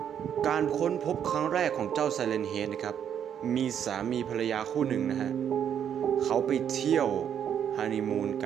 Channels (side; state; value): left; quieter; 8.9 dB